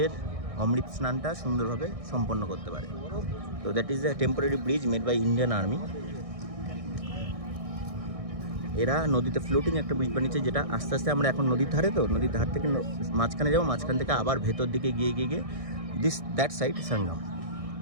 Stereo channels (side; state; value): left; late; 1.6 ms